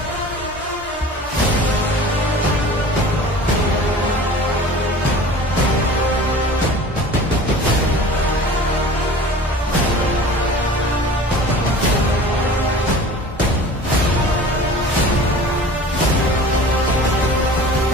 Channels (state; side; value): normal; both; correlation 0.41